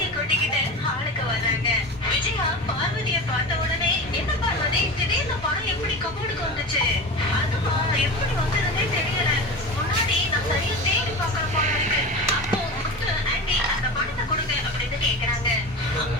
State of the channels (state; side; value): normal; both; correlation 0.30